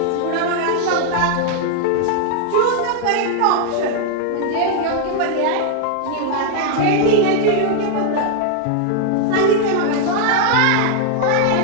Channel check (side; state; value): both; different; correlation 0.00